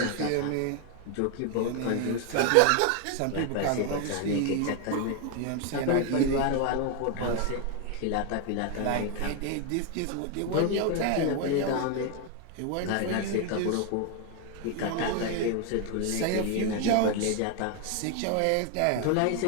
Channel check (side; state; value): both; different; correlation 0.01